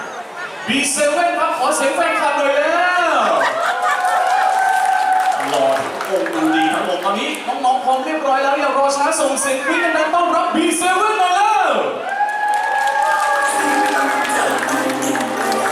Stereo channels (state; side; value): identical; both; correlation 1.00